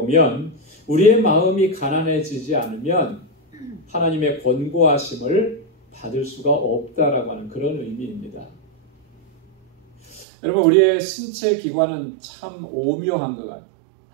우리의 마음이 가난해지지 않으면 하나님의 권고하심을 받을 수가 없다라고 하는 그런 의미입니다. 여러분 우리의 신체 기관은 참 오묘한 것 같아요.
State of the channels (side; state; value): left; drops out; at 10.2 s